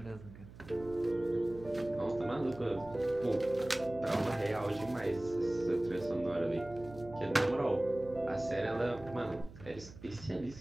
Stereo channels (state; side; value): noise; right; hum, 17 dB below the sound